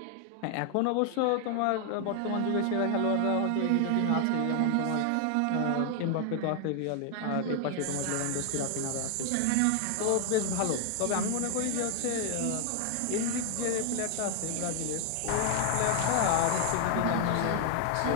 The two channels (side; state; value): both; different; correlation 0.00